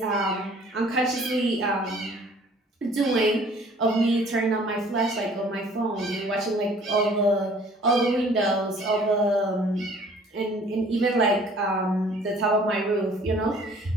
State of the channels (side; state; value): both; normal; correlation 0.54